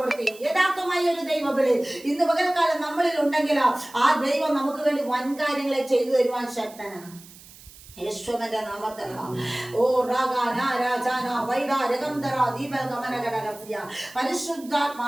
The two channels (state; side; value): noise; right; hiss, 21 dB below the sound